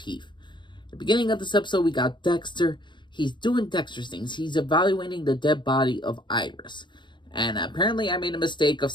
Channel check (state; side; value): late; right; 0.22 ms